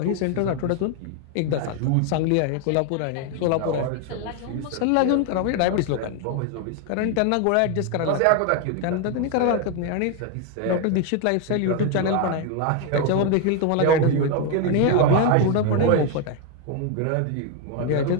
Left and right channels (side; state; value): both; different; correlation 0.01